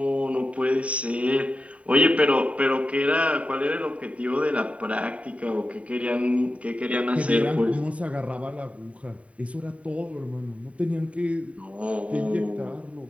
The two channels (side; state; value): left; late; 0.066 ms